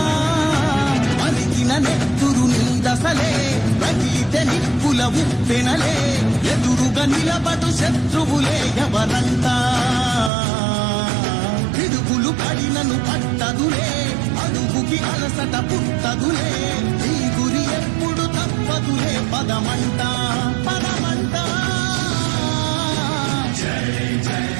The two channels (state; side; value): drops out; left; at 10.3 s